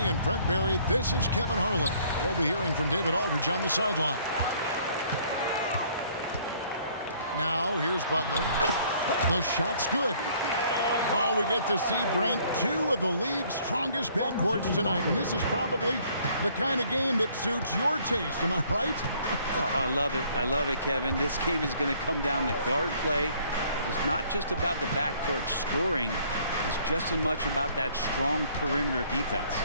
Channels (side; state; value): both; inverted; correlation -0.60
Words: and Brent Barry, this is Kevin Harlan. We'll be hearing from David Aldridge on the sideline. Now, here's Butler. The shot's good. Oh, we get to see, Brent, two of the league's strongest backcourts tonight. And this is probably the kind of game that suits your taste. Am I right? Oh, I love it. I love it, Kevin. This game is going to come down to guard play. It's not just about the backcourt scoring. It's just as much about that strong perimeter defense.